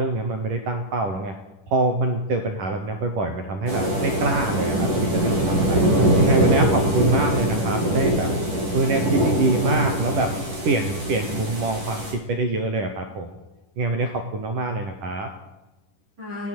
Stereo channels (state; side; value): late; left; 10 ms